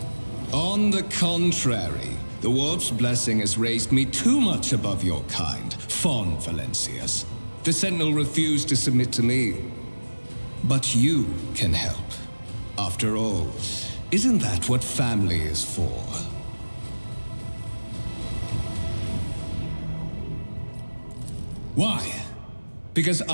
On the contrary, the Warp's blessing has raised me too much above your kind, Fon Valencius. The Sentinel refused to submit to me. But you can help. After all, isn't that what family is for? Why? Because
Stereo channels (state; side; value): inverted; both; correlation -1.00